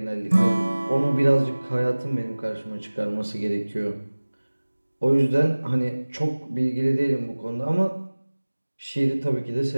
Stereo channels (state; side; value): inverted; both; correlation -1.00